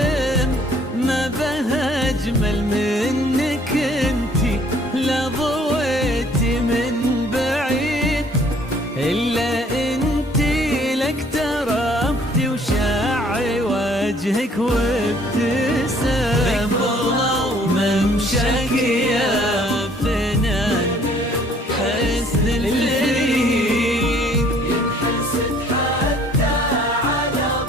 ما بها أجمل منك انتي لا ضويتي من بعيد، إلا انتي لك تربتي وشاعي وجهك وابتسام، وممشاك يا فنان حسن الفريد، ينحسد حتى على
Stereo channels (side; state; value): both; normal; correlation 0.59